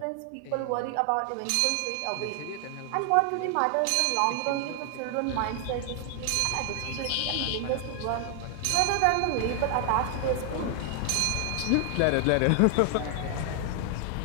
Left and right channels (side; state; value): both; different; correlation 0.00